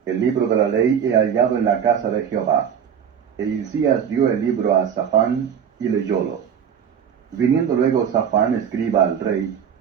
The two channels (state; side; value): quieter; left; 8.0 dB